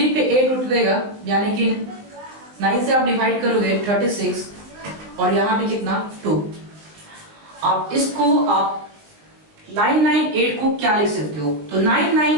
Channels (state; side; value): late; left; 19 ms